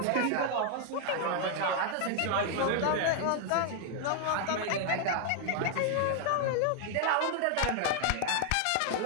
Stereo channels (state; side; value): different; both; correlation 0.00